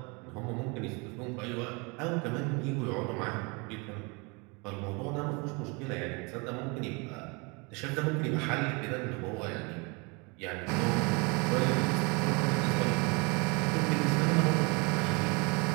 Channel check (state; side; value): quieter; left; 29.7 dB